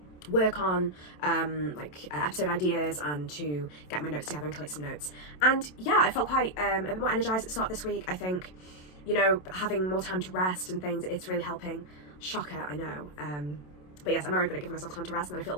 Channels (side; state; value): right; late; 27 ms